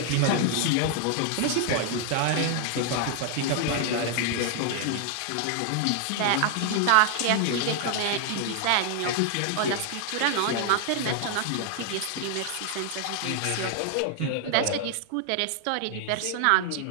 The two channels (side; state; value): both; different; correlation 0.00